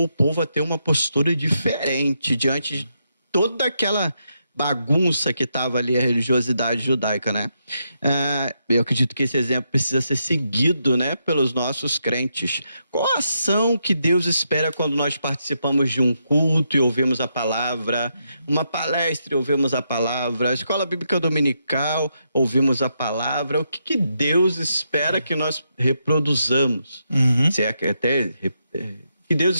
o povo a ter uma postura diferente diante de toda aquela bagunça que estava ali, a religiosidade judaica, né? Eu acredito que esse exemplo precisa ser seguido, né, pelos nossos crentes. Qual a ação que Deus espera quando nós participamos de um culto e ouvimos a palavra, uma palestra e ouvimos a palavra, a escola bíblica dominical, ouvimos a palavra? O que Deus espera que nós reproduzamos? Se é que até que Deus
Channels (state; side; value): inverted; both; correlation -0.81